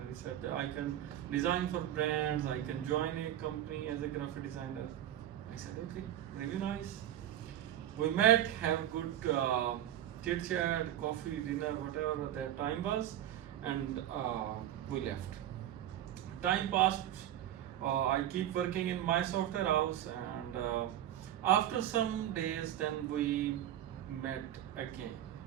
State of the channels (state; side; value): quieter; left; 12.0 dB